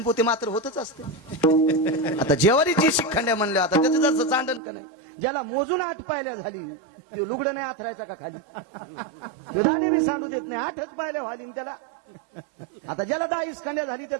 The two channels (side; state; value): left; drops out; at 4.6 s